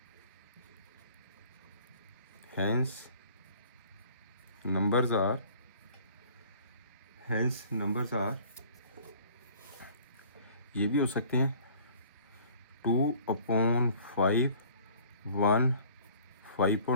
नंबर्स आर, ये भी हो सकते हैं 2/5 1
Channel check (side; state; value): both; inverted; correlation -0.52